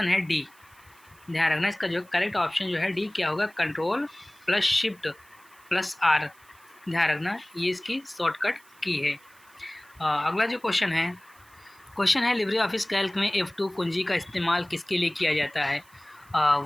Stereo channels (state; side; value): noise; right; hiss, 28 dB below the sound